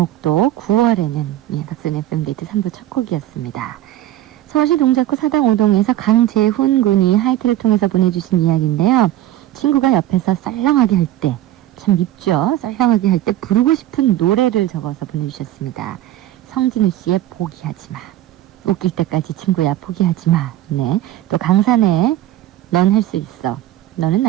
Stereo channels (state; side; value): quieter; left; 13.5 dB